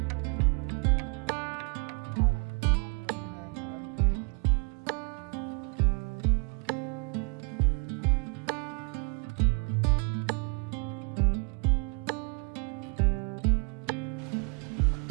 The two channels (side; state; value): left; quieter; 34.4 dB